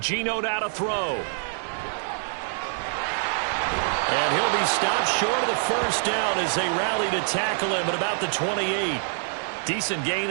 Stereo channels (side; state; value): left; silent; digital silence